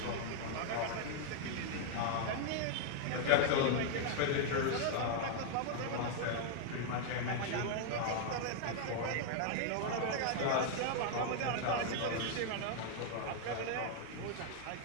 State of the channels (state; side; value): different; both; correlation 0.00